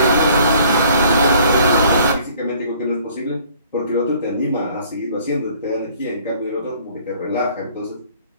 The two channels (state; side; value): inverted; both; correlation -0.57